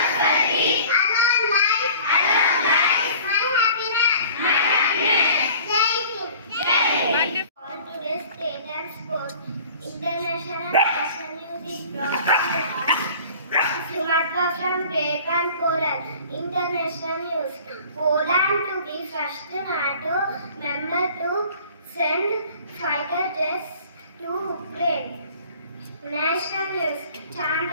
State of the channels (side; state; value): both; inverted; correlation -0.47